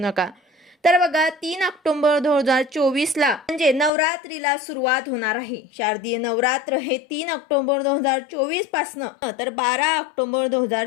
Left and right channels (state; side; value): drops out; right; at 3.9 s